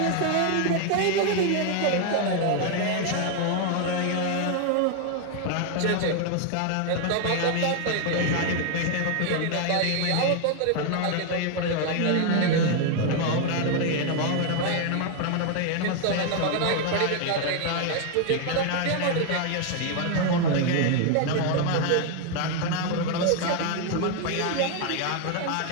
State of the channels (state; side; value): different; both; correlation 0.00